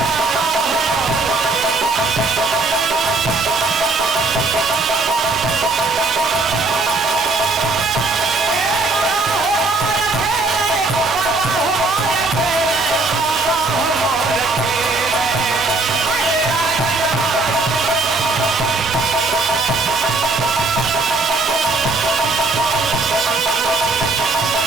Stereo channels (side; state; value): left; quieter; 3.4 dB